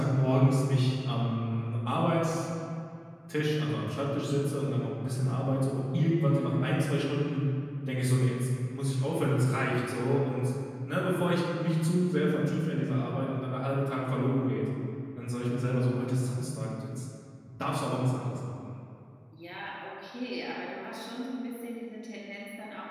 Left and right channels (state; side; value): identical; both; correlation 1.00